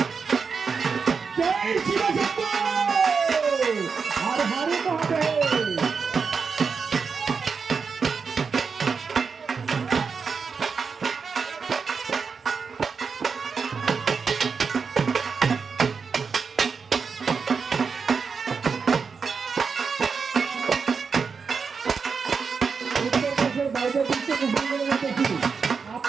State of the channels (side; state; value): left; quieter; 5.5 dB